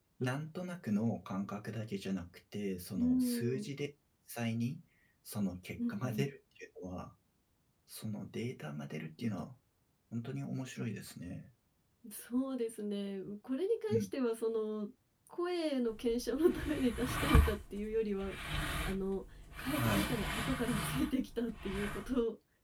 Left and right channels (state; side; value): identical; both; correlation 1.00